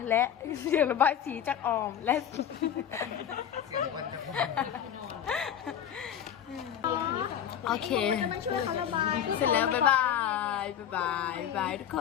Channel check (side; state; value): right; quieter; 9.4 dB